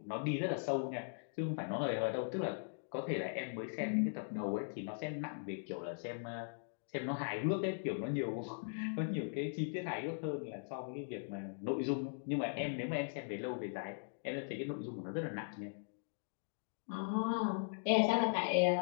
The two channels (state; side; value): silent; right; digital silence